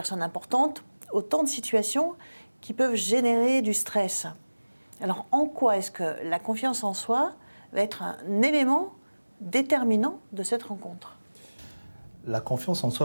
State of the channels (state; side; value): inverted; both; correlation -1.00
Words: importante, autant de situations qui peuvent générer du stress. Alors, en quoi est-ce que la confiance en soi va être un élément déterminant de cette rencontre ? La confiance en